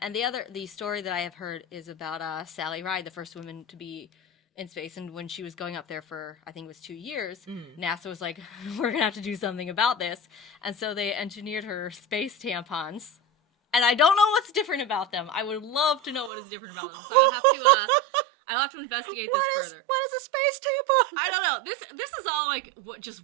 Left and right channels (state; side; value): drops out; left; at 16.3 s